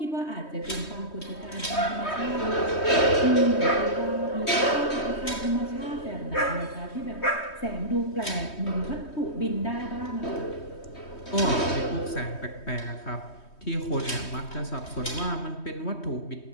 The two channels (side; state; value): right; late; 3.2 ms